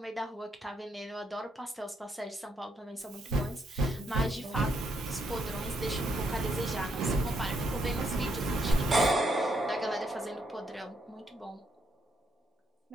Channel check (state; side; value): normal; both; correlation 0.76